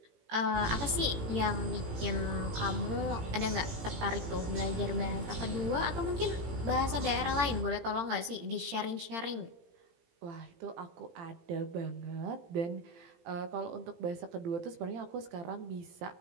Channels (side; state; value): left; late; 18 ms